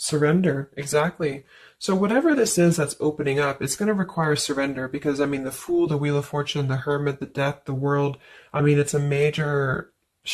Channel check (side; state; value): both; identical; correlation 1.00